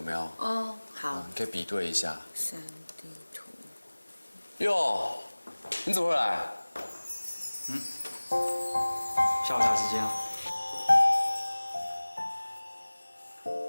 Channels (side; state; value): both; inverted; correlation -1.00